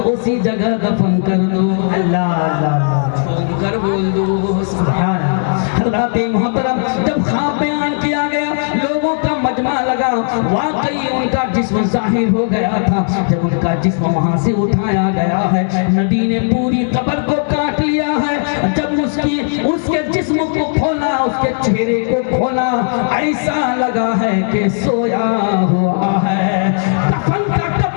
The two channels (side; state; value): right; silent; digital silence